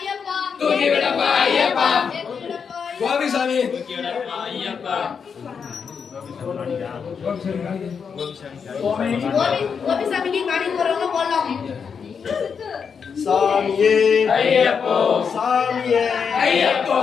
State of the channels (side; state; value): right; quieter; 6.3 dB